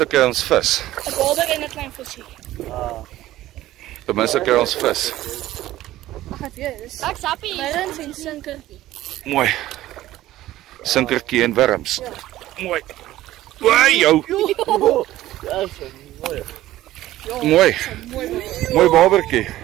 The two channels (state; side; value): quieter; left; 15.1 dB